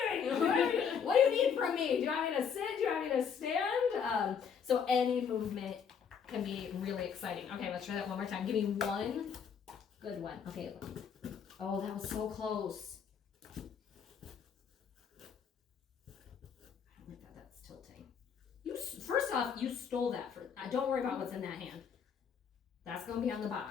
we doing? What do you need from me? Do you want me to sit? Do you want me to stand? So any movement can be really exciting. Okay, let's try that one more time. Give me one good one. Okay, look. Oh, that was so close. I don't like that. That's tilting. First off, you stole that. Don't worry about what's in that hand. That's going to be on the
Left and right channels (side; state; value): right; quieter; 7.1 dB